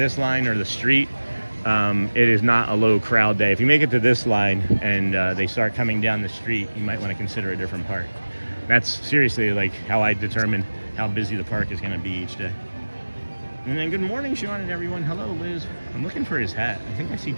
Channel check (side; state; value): both; inverted; correlation -1.00